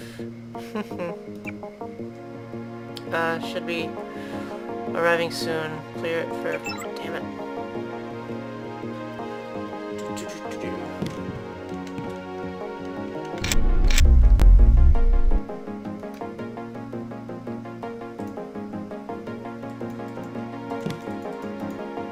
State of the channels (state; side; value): identical; both; correlation 1.00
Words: Should be arriving soon. Clear it for... damn it.